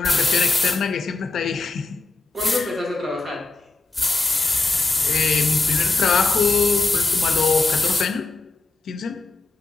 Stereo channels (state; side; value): quieter; right; 3.4 dB